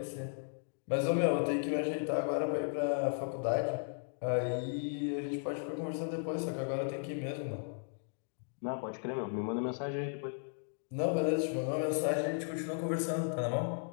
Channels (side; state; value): right; silent; digital silence